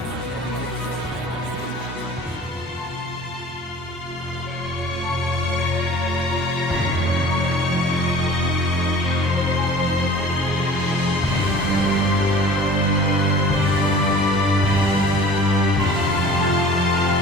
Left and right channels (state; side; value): normal; both; correlation 0.44